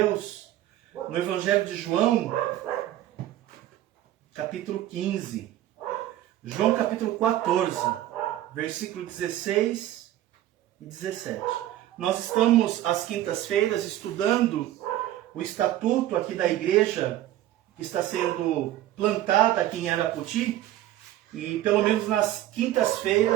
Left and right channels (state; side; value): quieter; left; 13.6 dB